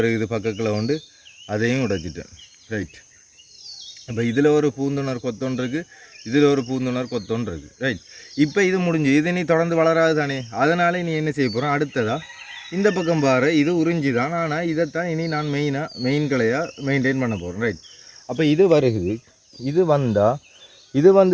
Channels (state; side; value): identical; both; correlation 1.00